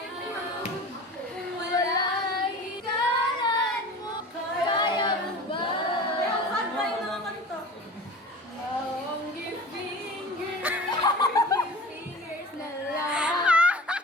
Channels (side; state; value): both; normal; correlation 0.37